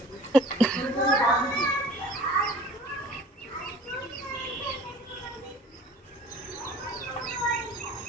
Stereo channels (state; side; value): normal; both; correlation 0.47